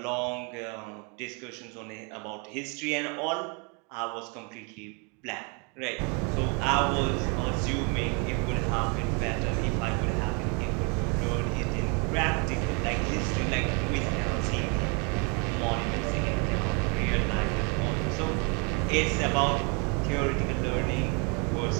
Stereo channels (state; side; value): quieter; left; 34.0 dB